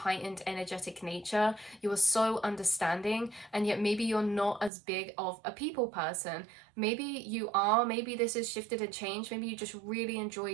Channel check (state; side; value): drops out; left; at 4.7 s